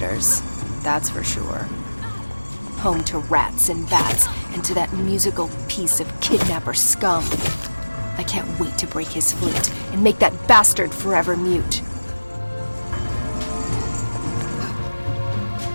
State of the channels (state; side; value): inverted; both; correlation -1.00